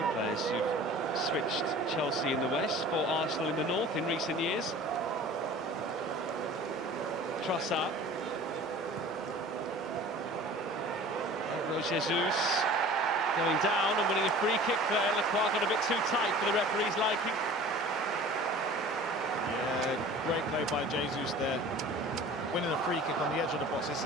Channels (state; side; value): normal; both; correlation 0.43